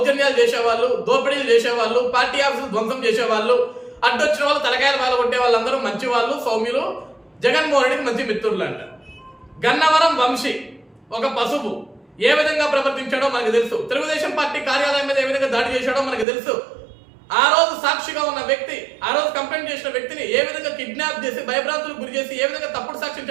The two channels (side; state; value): left; drops out; at 16.2 s